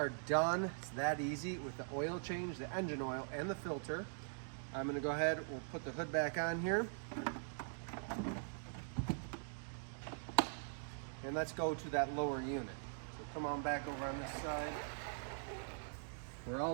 done. It's that easy with the oil change, the engine oil, and the filter. I'm gonna go ahead, we'll put the hood back on here. And let's go to that lower unit. So come on back over on this side. We're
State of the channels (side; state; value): left; silent; digital silence